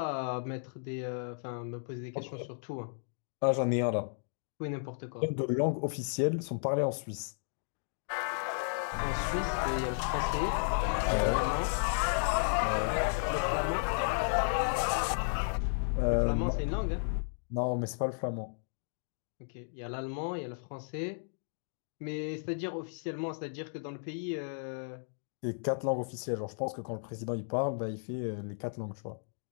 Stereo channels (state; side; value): silent; right; digital silence